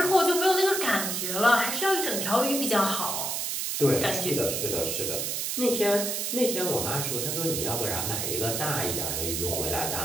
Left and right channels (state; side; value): noise; right; hiss, 1 dB below the sound